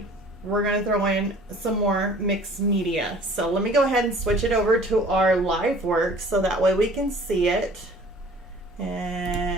we're going to throw in some more mixed media. So let me go ahead and switch it over to our live work so that way we can see it.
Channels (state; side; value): normal; both; correlation 0.49